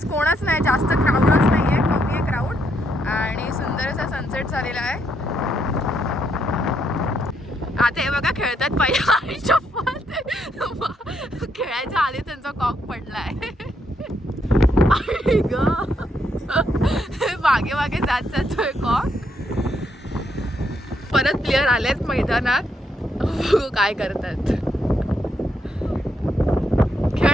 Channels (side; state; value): both; normal; correlation 0.76